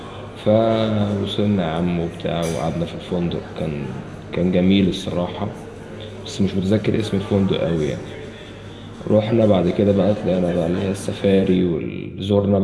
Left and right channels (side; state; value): both; identical; correlation 1.00